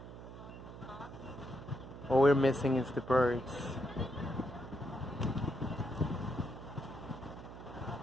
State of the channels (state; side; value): noise; right; hum, 13 dB below the sound